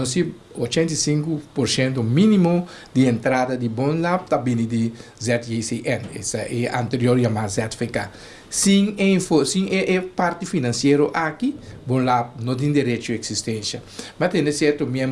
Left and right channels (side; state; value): both; identical; correlation 1.00